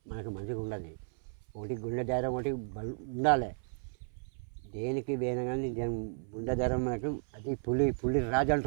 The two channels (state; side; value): silent; left; 55 dB below the other